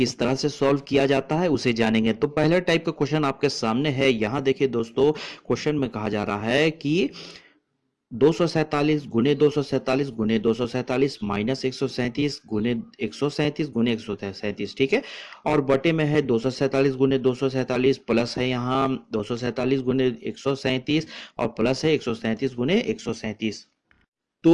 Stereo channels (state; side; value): identical; both; correlation 1.00